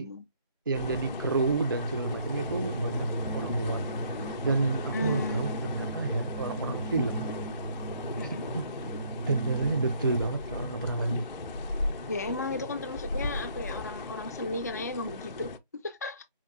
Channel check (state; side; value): inverted; both; correlation -0.63